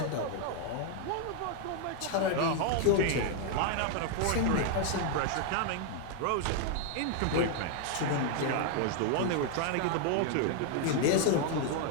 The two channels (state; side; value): different; both; correlation 0.00